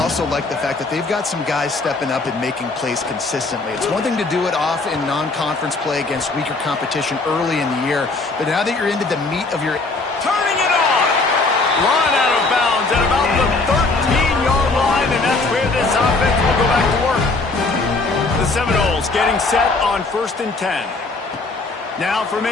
like the fact that they've got some guys stepping up and making plays consistently. It's one thing to do it off in non-conference play against weaker competition early in the year, but now that you're into the meat of your... Turning it Run out of bounds at about the 13-yard line, and that's where this offense will go back to work. The Seminoles getting set on 1st and 10. Now from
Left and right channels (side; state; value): right; quieter; 3.5 dB